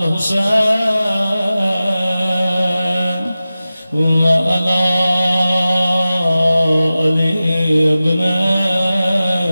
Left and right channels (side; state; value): both; inverted; correlation -0.95